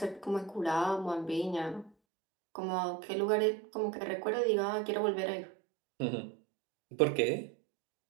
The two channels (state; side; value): drops out; left; at 1.9 s